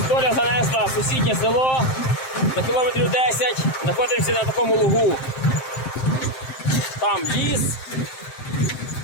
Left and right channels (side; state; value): right; late; 7.6 ms